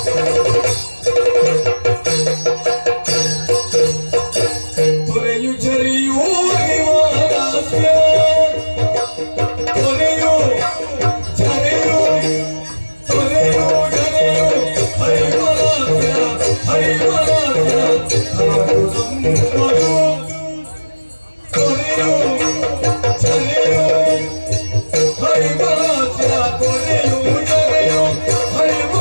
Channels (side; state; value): both; inverted; correlation -1.00